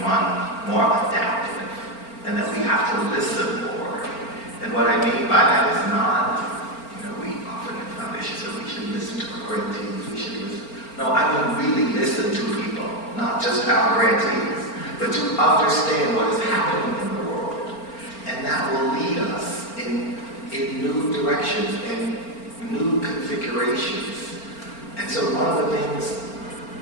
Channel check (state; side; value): late; right; 4.4 ms